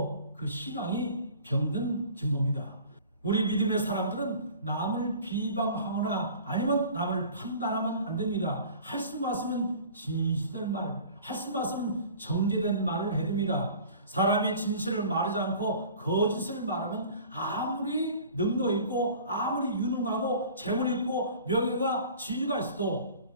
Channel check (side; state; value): both; inverted; correlation -0.45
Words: 그 신앙이 병든 증거입니다. 우리 믿음의 사람들은 남을 비방하거나 아니면 남을 판단하면 안 됩니다. 할 수 있으면 진실된 말, 할 수 있으면 정제된 말을 해야 됩니다. 사람이 진실을 말하지 않고 거짓을 말하면 아무리 능력 있고 아무리 유능하고 재물 있고 명예가 지위가 있어도